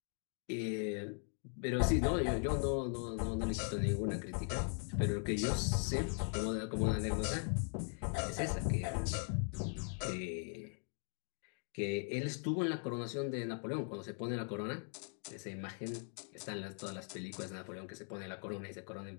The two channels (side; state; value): right; silent; 51 dB below the other